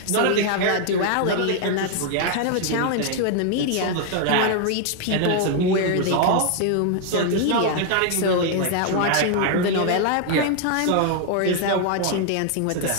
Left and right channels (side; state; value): both; different; correlation 0.00